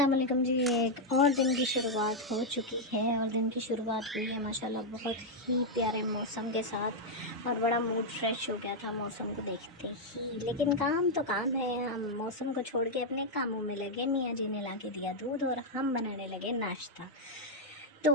वालेकुम जी। एक और दिन की शुरुआत हो चुकी है और दिन की शुरुआत हुई है माशाल्लाह बहुत ही प्यारे मौसम के साथ और बड़ा मूड फ्रेश हो गया था मौसम को देखते ही। लेकिन काम तो काम है, हम मौसम को छोड़ के अपने कामों में लगे। मियाँ जी ने ला के दिया दूध और हम बनाने लगे नाश्ता। तो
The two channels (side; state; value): both; normal; correlation -0.01